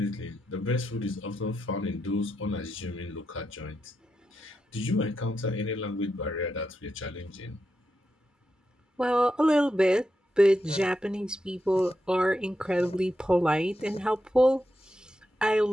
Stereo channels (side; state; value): both; normal; correlation 0.86